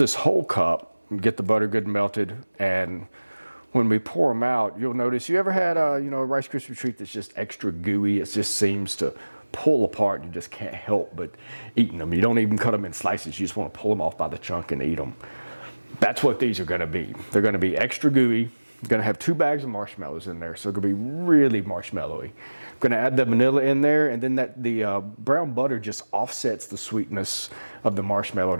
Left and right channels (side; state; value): both; inverted; correlation -1.00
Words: whole cup, get the butter good and melted, and when we pour them out, you'll notice, you ever had a Rice Krispie treat that's just extra gooey? It just seems to pull apart. You just can't help but eating them. You don't even cut them in slices. You just want to pull them off by the chunk and eat them. That's what these are going to be. They're going to be extra gooey. I'm going to have 2 bags of marshmallows in there, so it's going to be really marshmallowy. I'm going to add the vanilla in there, and then the brown butter just offsets the sweetness of the marshmallow